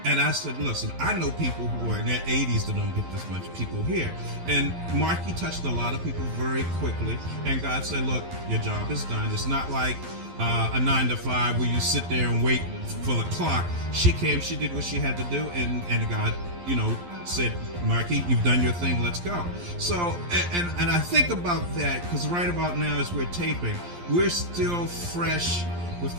And I said, listen, I know people who are in their 80s that don't get this much people here. And Marquis touched a lot of people very quickly. And God said, look, your job is done. It's not like a 9 to 5 where you sit there and wait for the clock. She came, she did what she had to do, and God, said, Marquis, you've done your thing, let's go. So, and I think about that because right about now as we're taping, we're still fresh with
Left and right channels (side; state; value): left; late; 11 ms